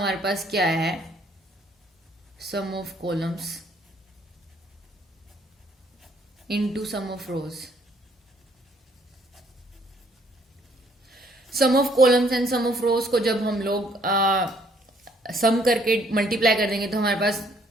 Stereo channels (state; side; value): normal; both; correlation 0.65